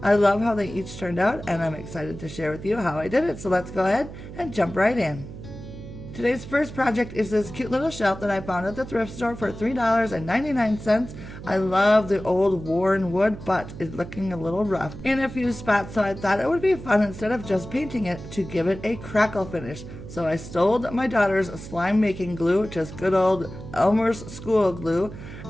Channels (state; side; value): noise; right; hum, 12 dB below the sound